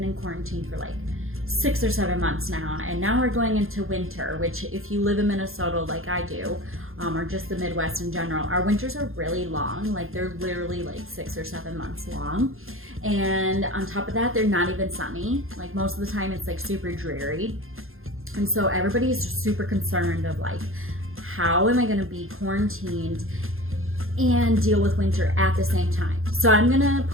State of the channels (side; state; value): left; late; 0.60 ms